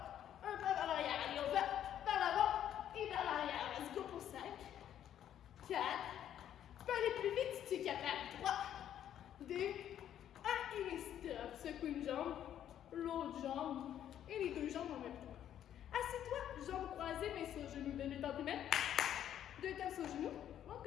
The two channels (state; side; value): quieter; right; 10.5 dB